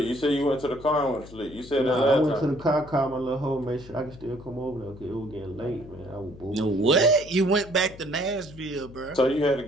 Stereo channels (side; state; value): left; noise; hum, 18 dB below the sound